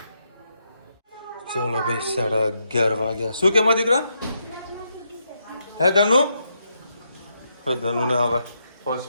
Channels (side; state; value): both; inverted; correlation -0.80